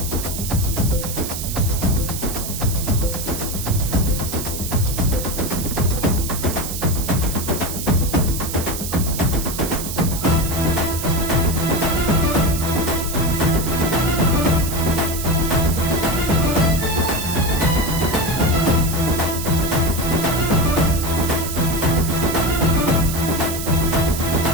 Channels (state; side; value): noise; right; hiss, 7 dB below the sound